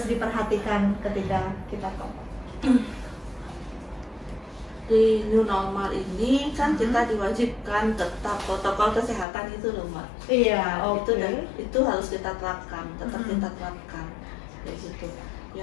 diperhatikan ketika kita ke mall? Di new normal ini kan kita diwajibkan tetap protokol kesehatan itu loh mbak. Iya, itu harus kita terapkan, tetap kita terapkan kayak gitu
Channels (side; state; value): right; drops out; at 9.2 s